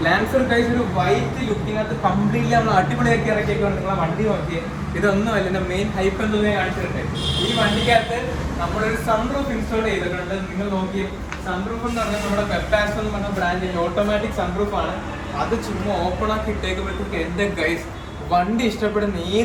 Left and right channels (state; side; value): identical; both; correlation 1.00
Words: ലാൻസർ ഗൈസ് ഒരു വൈറ്റ് ലുക്കിനകത്ത് കംപ്ലീറ്റ്ലി നമ്മൾ അടിപൊളിയാക്കി ഇറക്കിയേക്കാണ്. നിങ്ങളെ വണ്ടി നോക്കിയേ, ഇതൊന്നുമല്ല എൻ്റെ മെയിൻ ഹൈപ്പ് എന്ന് ഞാൻ കാണിച്ചിട്ടുണ്ട്. ഈ വണ്ടിക്കകത്ത് നമ്മളൊരു സൺറൂഫ് ഇൻസ്റ്റാൾ ചെയ്തിട്ടുണ്ട്. നിങ്ങൾ നോക്കിയേ, സൺറൂഫ് എന്ന് പറഞ്ഞാൽ നമ്മുടെ വെബാസ്റ്റോ എന്ന് പറഞ്ഞ ബ്രാൻഡിൻ്റെ ഓട്ടോമാറ്റിക് സൺറൂഫ് ആണ്. അത് ചുമ്മാ ഓപ്പൺ ആക്കി ഇട്ടേക്കുമ്പോഴത്തേക്ക് എൻ്റെ ഗൈസ് വണ്ടി ഇഷ്ടപ്പെടുന്ന